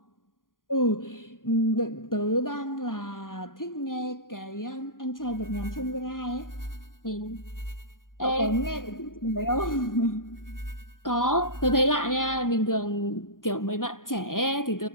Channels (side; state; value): right; late; 0.90 ms